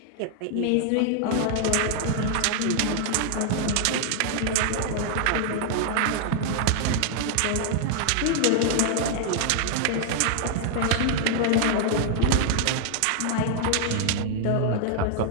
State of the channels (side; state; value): both; different; correlation 0.00